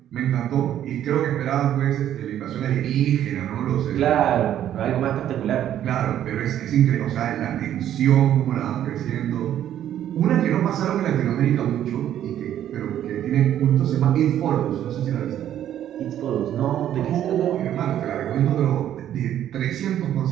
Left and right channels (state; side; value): quieter; left; 11.1 dB